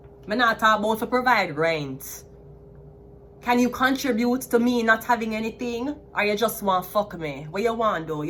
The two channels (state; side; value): identical; both; correlation 1.00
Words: I not talk about to provide rent. Can you contribute to me not having anything? Or you just want fuck me? What you want though?